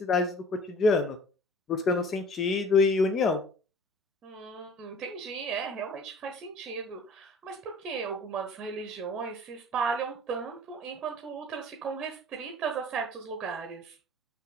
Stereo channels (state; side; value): normal; both; correlation 0.47